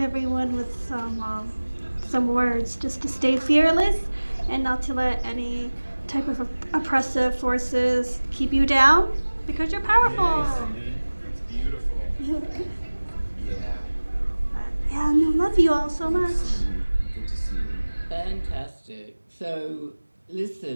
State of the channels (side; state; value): both; inverted; correlation -1.00